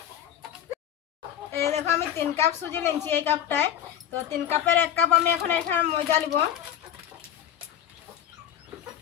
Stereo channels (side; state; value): right; quieter; 10.4 dB